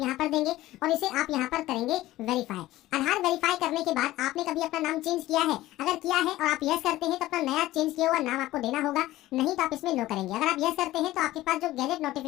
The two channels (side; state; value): right; quieter; 16.2 dB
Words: पर देंगे और इसे आप यहाँ पर करेंगे वेरीफाई। आधार वेरीफाई करने के बाद आपने कभी अपना नाम चेंज किया है, अगर किया है और आप यस करते हैं तो अपना नया चेंज किया हुआ नाम आपको देना होगा, नहीं तो आप इसमें नो करेंगे। अगर आप यस करते हैं तो आपके पास जो गैजेट